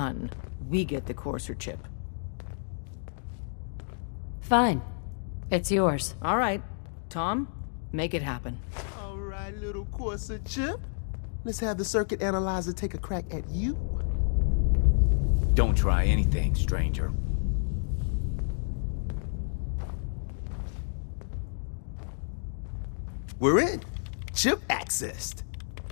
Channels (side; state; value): right; silent; digital silence